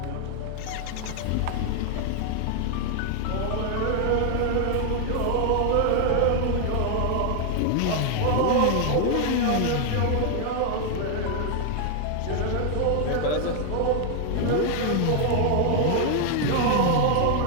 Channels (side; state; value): both; different; correlation 0.00